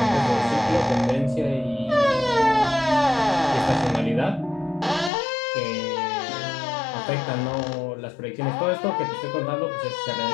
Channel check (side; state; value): right; drops out; at 5.1 s